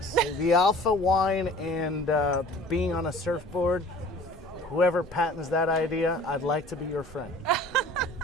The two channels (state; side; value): normal; both; correlation 0.47